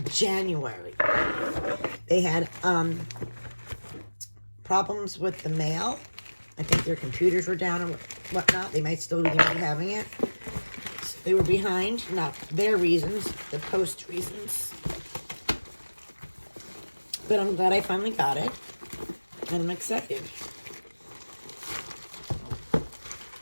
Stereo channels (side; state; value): both; inverted; correlation -1.00